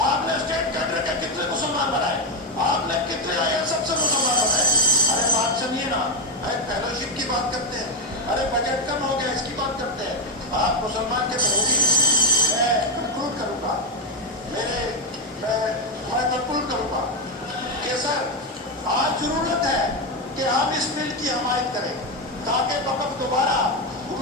आपने स्टेट कैडर के कितने मुसलमान बनाए? आपने कितने आईएएस अफसर मुसलमान बनाए? अरे बात सुनिए ना, अरे फेलोशिप की बात करते हैं, अरे बजट कम हो गया इसकी बात करते हैं। आप मुसलमान के विरोधी। मैं कंक्लूड करूंगा, मैं कंक्लूड करूंगा कि सर आज जरूरत है कि हम इस बिल की हमायत करें ताकि वक़्त दोबारा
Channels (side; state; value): both; normal; correlation 0.07